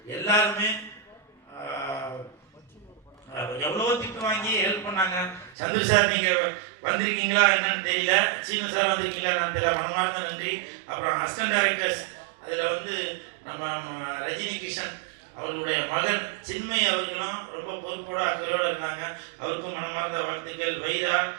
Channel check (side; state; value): left; drops out; at 5.6 s